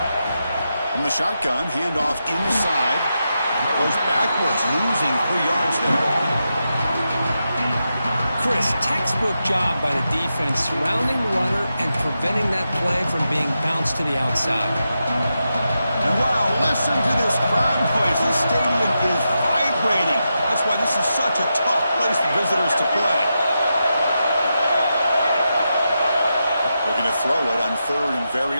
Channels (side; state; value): both; inverted; correlation -0.87